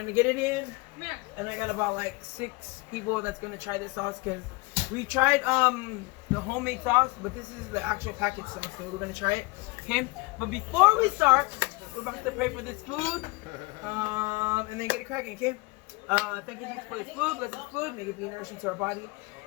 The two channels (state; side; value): quieter; right; 24.9 dB